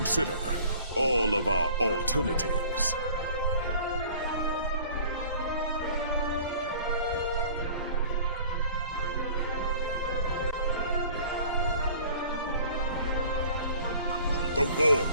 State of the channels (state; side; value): inverted; both; correlation -0.48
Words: all of our alternatives. The war